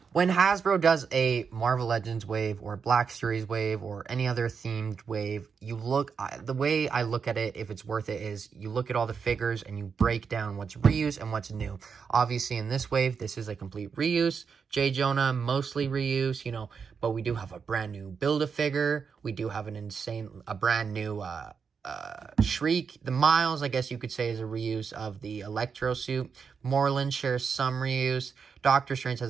When Hasbro does a Marvel Legends wave or Black Series wave or any other themed wave, the way I look at it, if it's worth it, is you look at all the figures and you break down what's reuse and what's new. Obviously, in this wave, this is a complete reuse. J. Jonah, mostly reuse, you know, but we do have a brand new Build-A-Figure. We do have a brand new Shriek. The Miles, I guess you could say, is a reuse of the Electro suit. Moreland shares some reuse. Doctor Strange has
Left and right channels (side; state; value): left; quieter; 6.0 dB